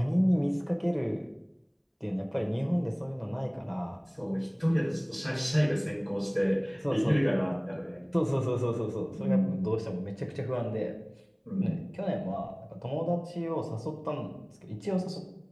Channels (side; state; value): both; identical; correlation 1.00